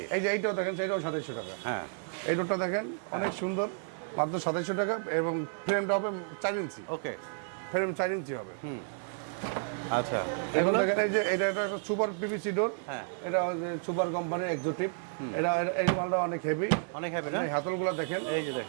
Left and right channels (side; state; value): left; silent; 57 dB below the other